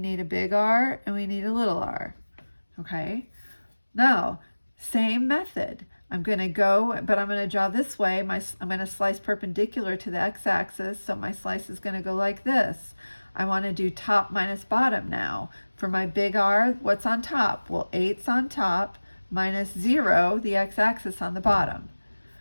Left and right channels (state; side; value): inverted; both; correlation -1.00